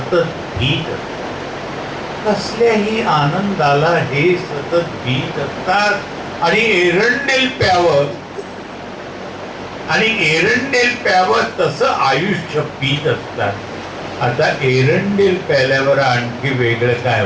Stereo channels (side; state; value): both; identical; correlation 1.00